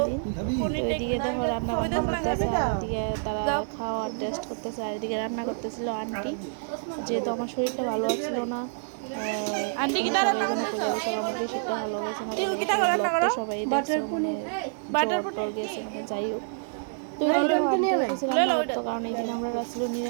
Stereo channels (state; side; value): silent; left; digital silence